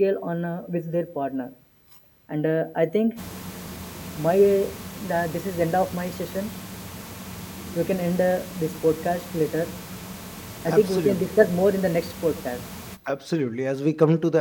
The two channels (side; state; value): both; identical; correlation 1.00